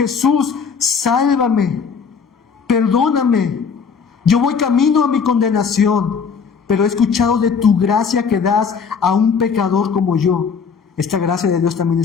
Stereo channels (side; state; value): right; quieter; 6.0 dB